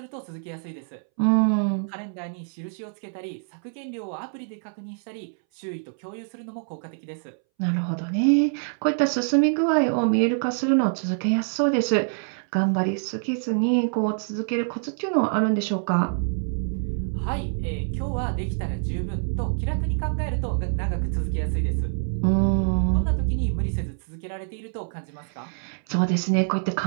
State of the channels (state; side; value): silent; left; 61 dB below the other